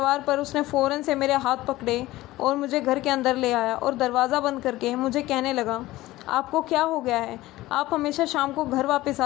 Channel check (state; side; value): quieter; right; 17.4 dB